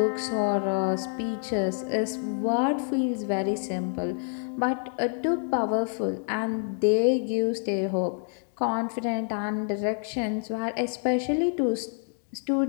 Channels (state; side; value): silent; right; 56 dB below the other